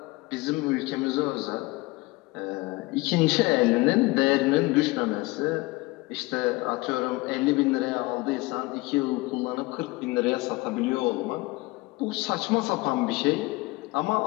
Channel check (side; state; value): right; quieter; 22.5 dB